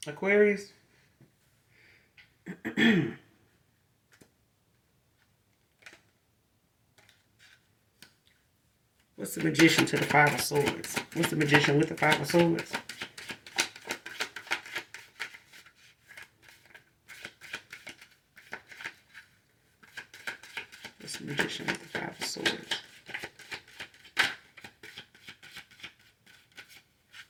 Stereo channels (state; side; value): identical; both; correlation 1.00